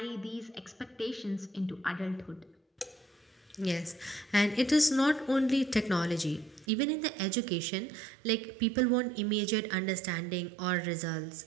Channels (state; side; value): drops out; left; at 6.7 s